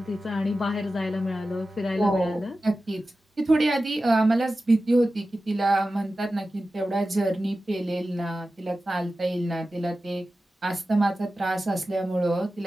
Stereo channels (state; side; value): normal; both; correlation 0.94